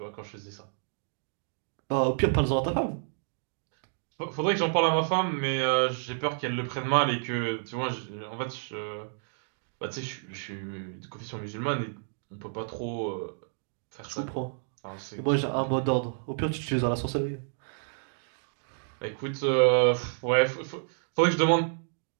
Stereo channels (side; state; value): left; silent; digital silence